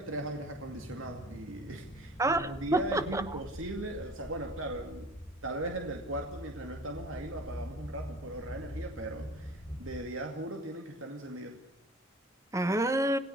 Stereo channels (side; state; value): both; normal; correlation 0.44